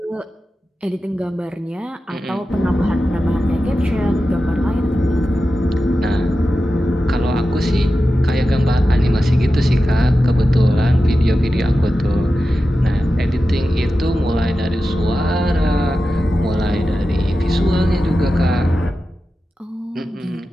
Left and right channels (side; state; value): both; normal; correlation 0.92